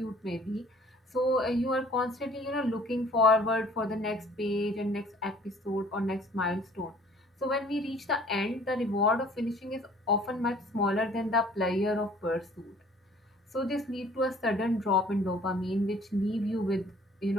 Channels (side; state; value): both; normal; correlation 0.54